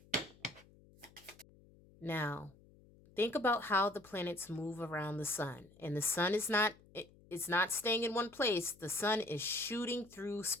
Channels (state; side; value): noise; left; hum, 25 dB below the sound